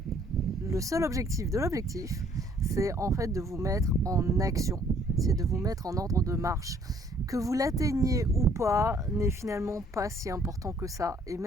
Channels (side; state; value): both; normal; correlation 0.61